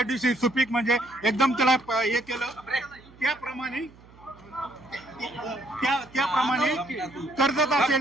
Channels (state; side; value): noise; right; hum, 24 dB below the sound